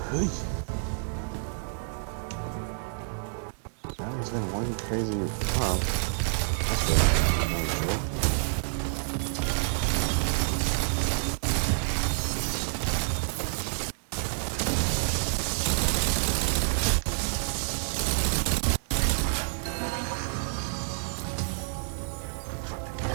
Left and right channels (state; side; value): silent; left; digital silence